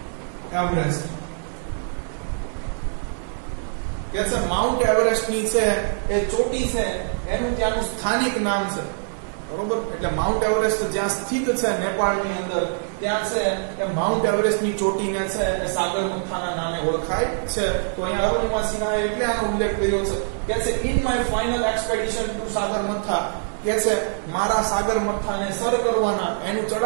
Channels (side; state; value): left; silent; digital silence